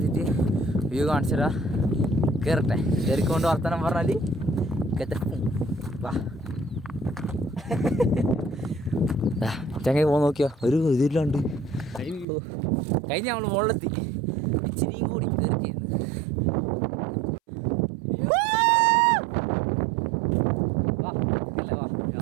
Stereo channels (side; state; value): left; drops out; at 12.2 s